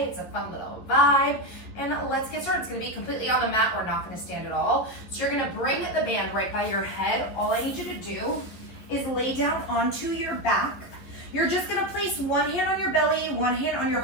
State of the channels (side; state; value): right; late; 11 ms